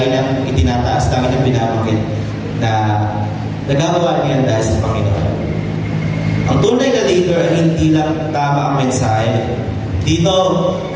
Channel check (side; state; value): both; identical; correlation 1.00